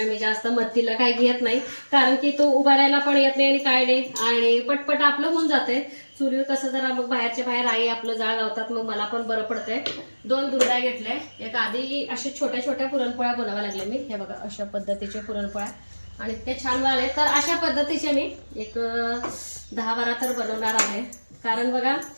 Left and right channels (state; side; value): inverted; both; correlation -1.00